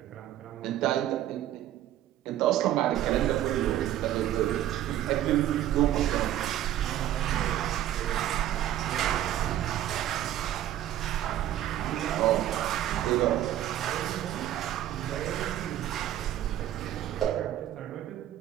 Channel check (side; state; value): left; quieter; 12.5 dB